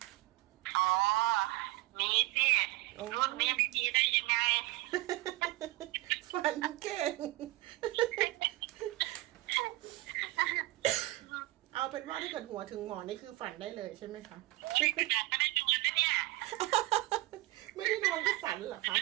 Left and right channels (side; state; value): left; quieter; 19.3 dB